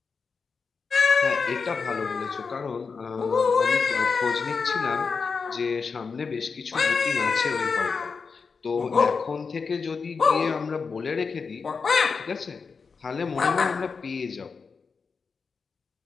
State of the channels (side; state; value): right; quieter; 5.1 dB